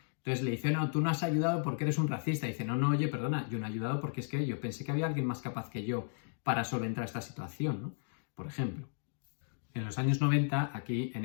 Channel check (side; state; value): right; silent; digital silence